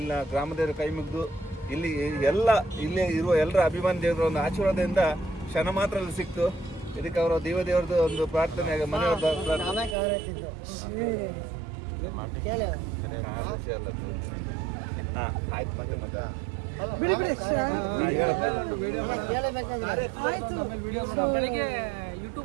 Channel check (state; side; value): drops out; left; at 10.0 s